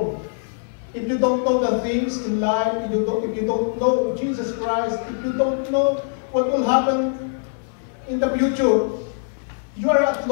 If you don't know the things in life, if you don't know Jesus Christ, if you don't know what will happen in the future, you are at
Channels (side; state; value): right; silent; 58 dB below the other